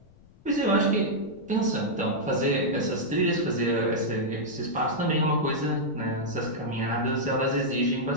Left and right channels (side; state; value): left; noise; rumble, 27 dB below the sound